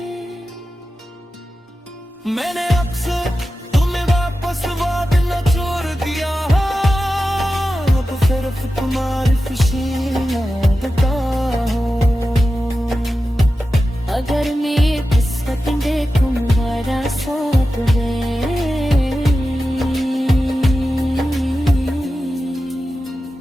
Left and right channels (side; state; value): both; normal; correlation 0.93